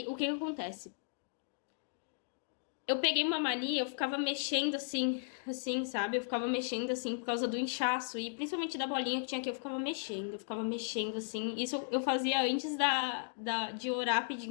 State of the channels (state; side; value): silent; right; digital silence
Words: o que acontece? Eu peguei uma mania, eu ficava mexendo assim, sabe? Eu ficava mexendo assim por causa do inchaço. E principalmente da bolinha que tinha aqui, eu ficava mexendo assim. Isso eu fazia antes de orar